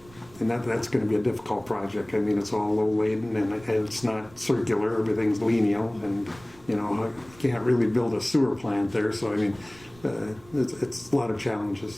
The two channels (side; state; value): right; noise; rumble, 23 dB below the sound